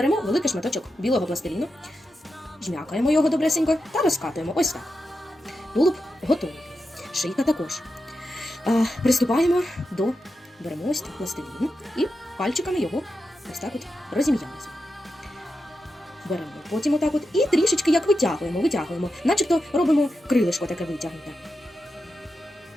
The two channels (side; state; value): both; normal; correlation 0.88